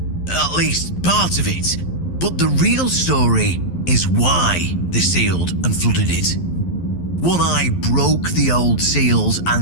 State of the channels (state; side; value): late; right; 11 ms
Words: at least part of it. But the real story is why they sealed and flooded it. One Eye broke the old seals